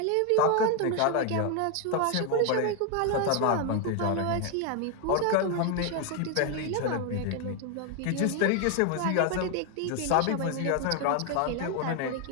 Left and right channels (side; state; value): both; different; correlation 0.01